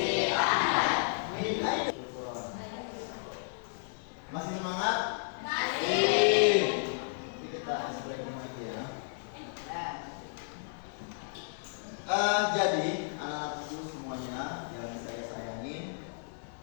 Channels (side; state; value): right; silent; 55 dB below the other